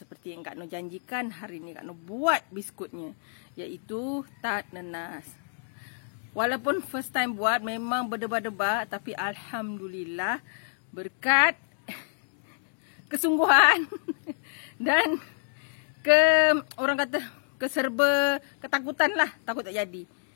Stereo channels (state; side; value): silent; right; digital silence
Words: yang Kak Noh janjikan, hari ini Kak Noh buat biskutnya, iaitu tart nanas. Walaupun first time buat memang berdebar-debar, tapi Alhamdulillah berkat kesungguhan dan orang kata keserba ketakutan lah, takut tak jadi.